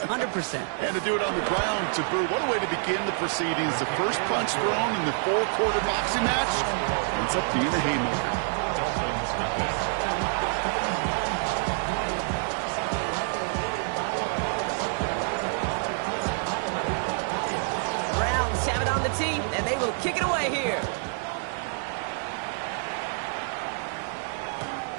And to do it on the ground, to Brew, what a way to begin the proceedings. The first punch thrown in the 4-quarter boxing match ends up being a haymaker. Browns have it on the team, and they will kick it away here.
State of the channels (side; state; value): left; silent; 59 dB below the other